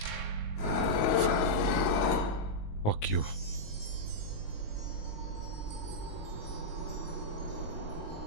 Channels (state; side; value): late; right; 19 ms